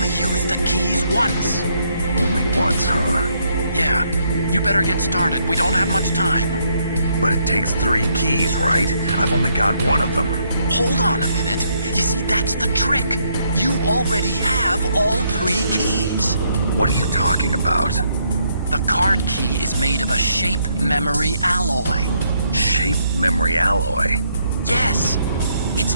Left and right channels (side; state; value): both; inverted; correlation -0.73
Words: use the keys once. Only once, huh? Yeah, you better get started. We don't have much time. But it takes 3 keys, right? I've only got 1 of them. Hold on a minute. You see, that's the trick. You already have all 3 keys. What are you talking about? The card key is made of a shape memory alloy. Shape memory alloy? Yes. It's